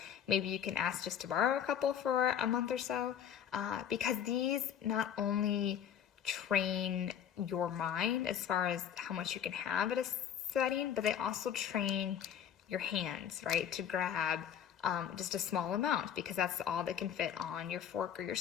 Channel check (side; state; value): right; quieter; 9.1 dB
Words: maybe you can ask just to borrow a couple for a month or so, because these not only train your mind as far as how much you can have at a setting, but they also train your hands, right, to grab just a small amount, because that's all that can fit on your fork or your